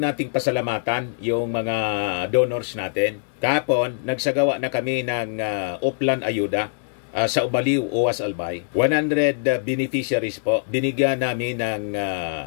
nating pasalamatan yung mga donors natin. Kahapon, nagsagawa na kami ng Uplan Ayuda sa Ubaliw, Uwas Albay. 100 beneficiaries po. Binigyan namin ng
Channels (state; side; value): silent; right; digital silence